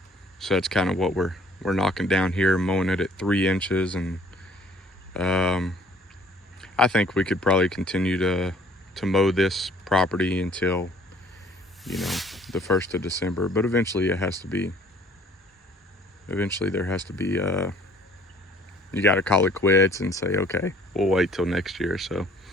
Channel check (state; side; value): normal; both; correlation 0.56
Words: that's kind of what we're knocking down here, mowing it at 3 inches, and I think we could probably continue to mow this property until, the 1st of December. But eventually there has to be, you got to call it quits and say, okay, we'll wait till next year. So,